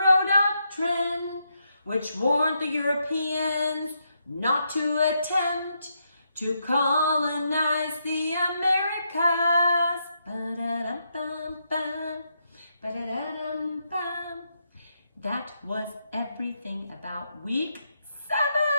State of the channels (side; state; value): both; inverted; correlation -0.80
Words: Doctrine, which warned the Europeans not to attempt to colonize the Americas. Ba-da-dum-bum-bum, ba-da-da-dum-bum. That was everything about week